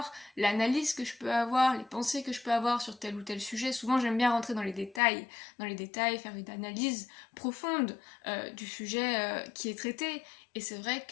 l'analyse que je peux avoir, les pensées que je peux avoir sur tel ou tel sujet. Souvent, j'aime bien rentrer dans les détails, faire une analyse profonde du sujet qui est traité. Et c'est vrai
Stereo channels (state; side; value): drops out; right; at 5.0 s